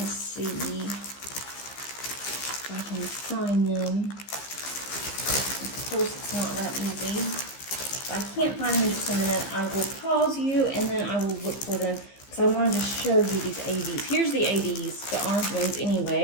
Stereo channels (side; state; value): right; late; 15 ms